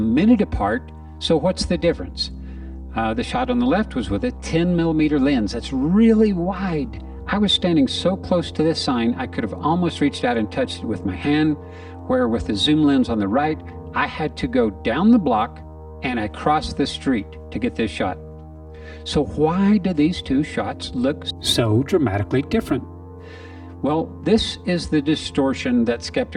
apart, so what's the difference? The shot on the left was with a 10mm lens. That's really wide. I was standing so close to this sign, I could have almost reached out and touched it with my hand, where with the zoom lens on the right, I had to go down the block and I crossed the street to get this shot. So why do these two shots look so dramatically different? Well, this is the distortion that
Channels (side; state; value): both; identical; correlation 1.00